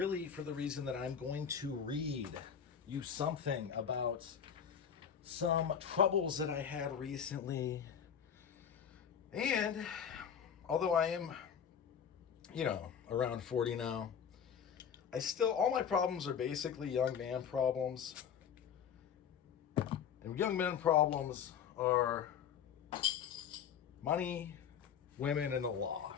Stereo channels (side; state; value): right; quieter; 7.9 dB